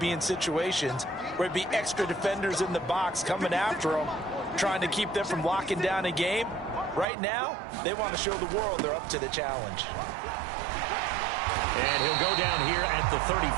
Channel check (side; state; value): left; drops out; at 7.1 s